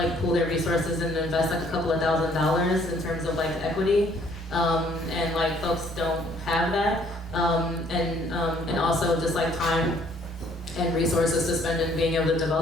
pool their resources and invest like a couple of $1,000s in terms of like equity. And like folks don't have that. And also just like time and resources to spend in being able to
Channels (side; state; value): both; normal; correlation 0.62